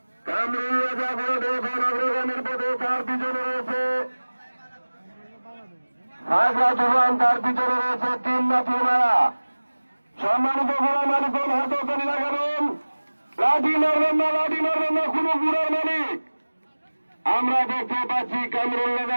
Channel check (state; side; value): inverted; both; correlation -1.00